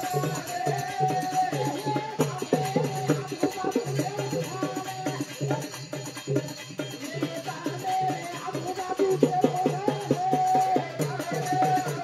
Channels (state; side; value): identical; both; correlation 1.00